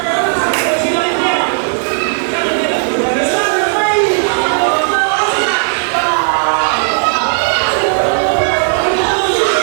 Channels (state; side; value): silent; left; 66 dB below the other